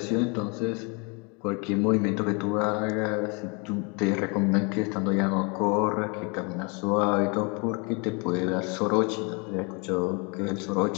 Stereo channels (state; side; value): quieter; right; 32.1 dB